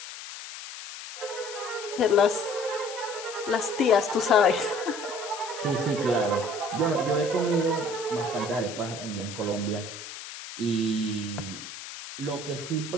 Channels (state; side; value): noise; left; hiss, 11 dB below the sound